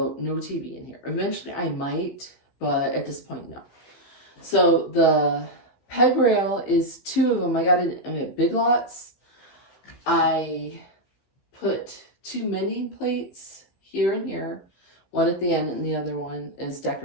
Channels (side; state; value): right; late; 15 ms